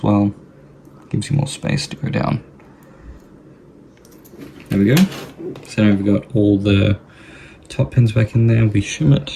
well. Gives you more space to go down. There we go. So now we've got all the top pins back in there. We shim it.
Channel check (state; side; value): identical; both; correlation 1.00